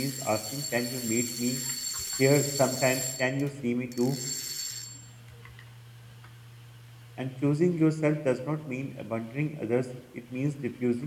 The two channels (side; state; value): both; identical; correlation 1.00